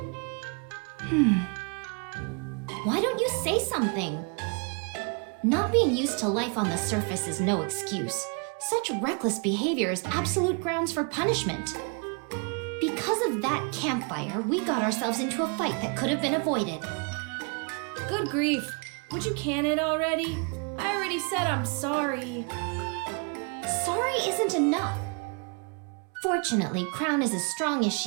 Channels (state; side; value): quieter; left; 36.2 dB